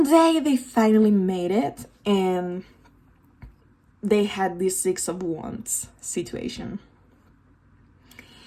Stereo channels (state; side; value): identical; both; correlation 1.00